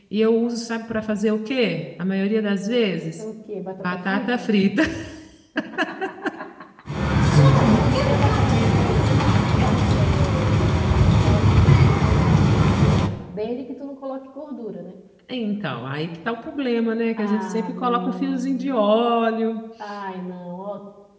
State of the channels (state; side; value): identical; both; correlation 1.00